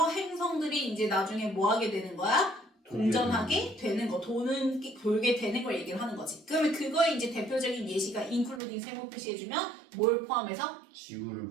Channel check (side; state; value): left; drops out; at 8.6 s